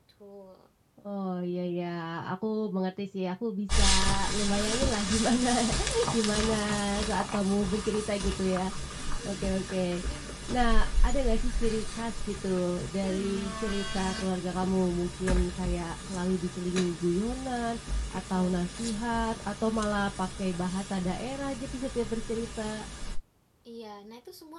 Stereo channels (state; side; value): identical; both; correlation 1.00